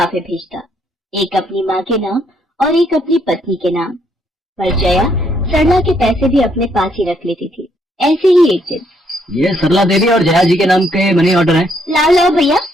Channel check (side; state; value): both; normal; correlation 0.72